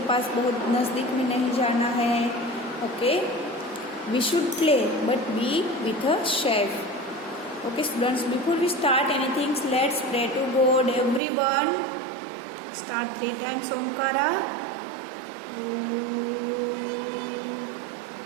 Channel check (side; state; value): left; drops out; at 11.2 s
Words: पास बहुत नज़दीक में नहीं जाना है. Okay, we should play but be with a safe. Okay students, before we start anything let's pray to God. Everyone start 3 times Omkara.